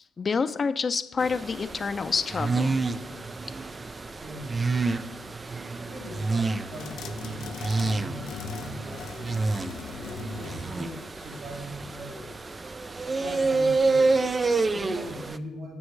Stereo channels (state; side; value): normal; both; correlation 0.89